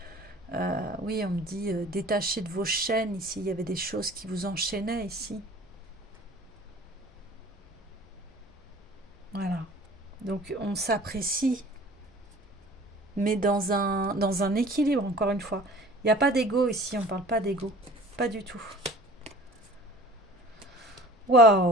oui, on me dit détaché de vos chaînes ici. Il y avait des choses qui vous enchaînaient ici. Voilà. Donc on s'apprécie, mais dans un équilibre, encore une fois. Il n'y a pas d'ego ici, on ne parle pas d'ego. Pas du tout.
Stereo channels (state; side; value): normal; both; correlation 0.46